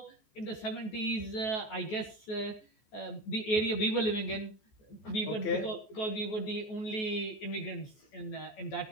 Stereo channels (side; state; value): right; late; 14 ms